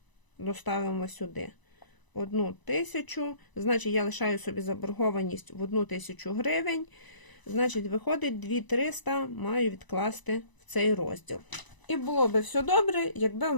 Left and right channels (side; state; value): right; late; 1.0 ms